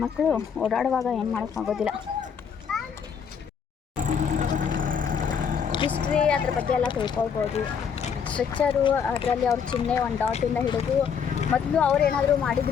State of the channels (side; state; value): right; quieter; 7.0 dB